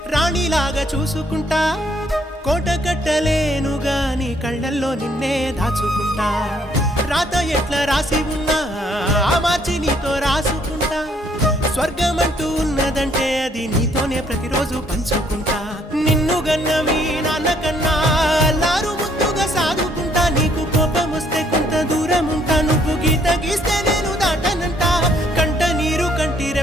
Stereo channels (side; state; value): both; normal; correlation 0.66